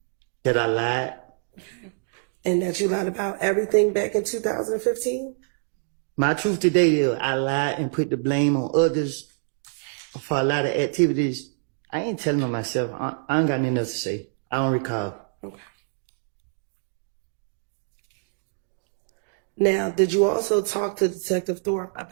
That I lied. And that you lied about everything back in 2015? My truth today is I lied and put the blame on others for a lot of activities. I ain't telling on myself. I ain't got nothing else to say. I don't recall. Okay. Now, did you also talk to Detective Thorpe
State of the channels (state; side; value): silent; left; digital silence